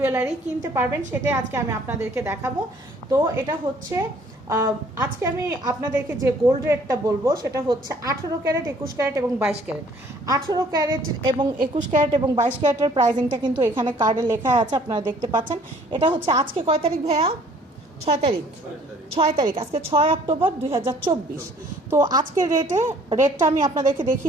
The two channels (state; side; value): normal; both; correlation 0.58